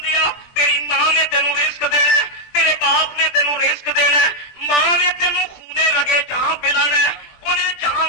تیری ماں نے تینوں رزق دینا ہے، تیرے باپ نے تینوں رزق دینا ہے، ماں نے تینوں خونے لگے جہاں پلانا ہے، انہیں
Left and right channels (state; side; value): late; right; 20 ms